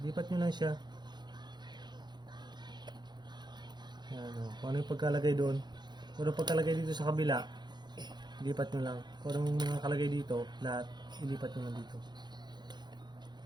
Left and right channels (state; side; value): late; left; 0.21 ms